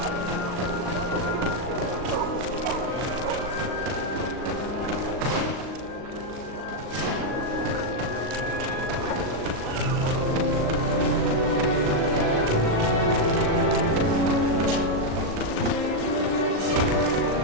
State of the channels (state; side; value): late; left; 38 ms